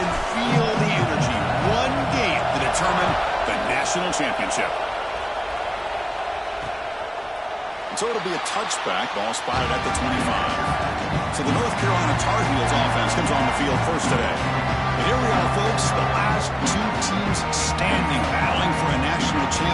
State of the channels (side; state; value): both; identical; correlation 1.00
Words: feel the energy. One game to determine the national championship. So it'll be a touchback, ball spotted at the 25. So the North Carolina Tar Heels offense comes on the field first today. And here we are, folks, the last two teams standing, battling for a national